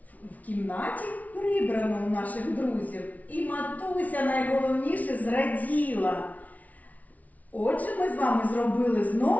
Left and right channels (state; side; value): late; right; 0.072 ms